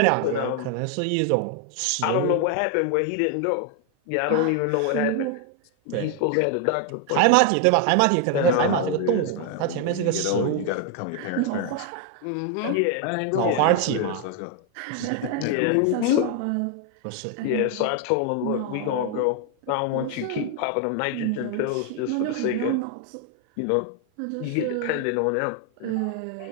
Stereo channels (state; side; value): different; both; correlation 0.00